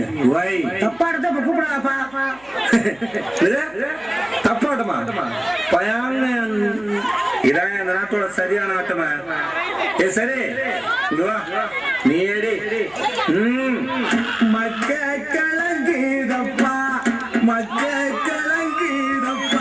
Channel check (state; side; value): noise; right; hum, 28 dB below the sound